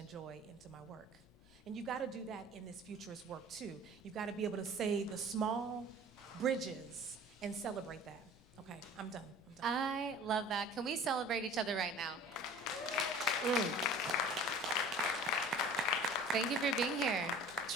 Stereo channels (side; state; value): left; noise; rumble, 28 dB below the sound